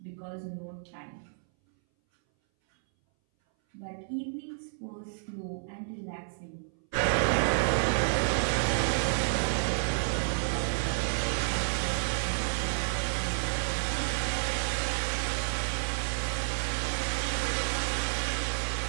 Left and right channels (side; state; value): left; silent; 58 dB below the other